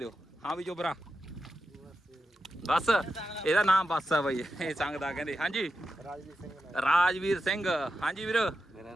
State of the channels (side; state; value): both; normal; correlation 0.89